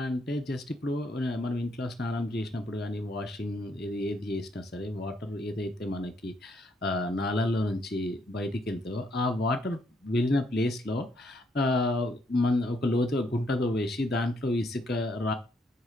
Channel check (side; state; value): both; normal; correlation 0.72